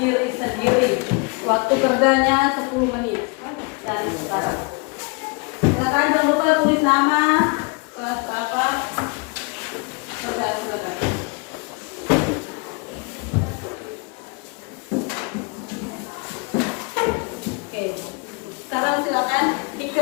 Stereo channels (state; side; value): quieter; right; 31.2 dB